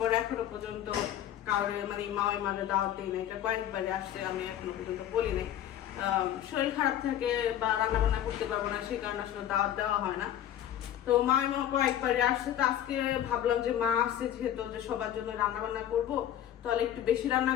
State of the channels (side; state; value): right; quieter; 11.1 dB